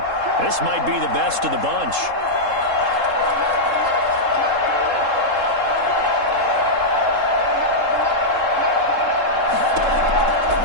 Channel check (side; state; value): left; late; 3.7 ms